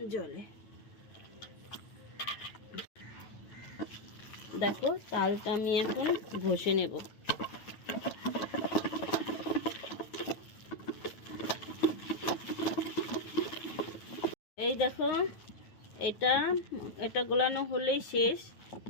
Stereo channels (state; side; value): late; right; 9.1 ms